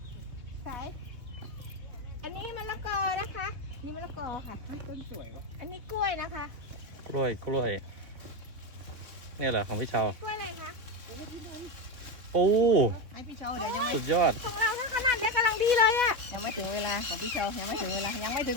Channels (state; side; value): late; left; 3.8 ms